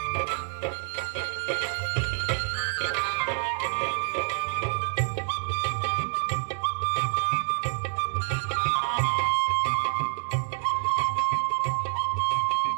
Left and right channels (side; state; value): left; silent; digital silence